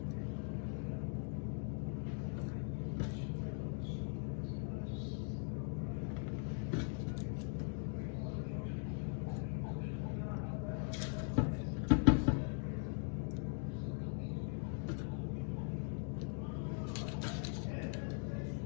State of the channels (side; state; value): right; silent; 50 dB below the other